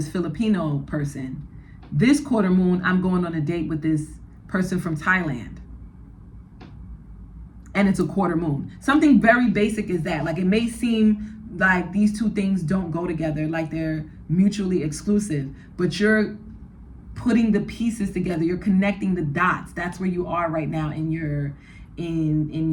Filipino person. This quarter moon, I'm going on a date with this person from Thailand. And it's a quarter moon. Something very basic is that. Like, it may seem like these two things don't go together, like they're mutually exclusive, but you're putting the pieces together. You're connecting the dots. That's where you are right now in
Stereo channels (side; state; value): both; identical; correlation 1.00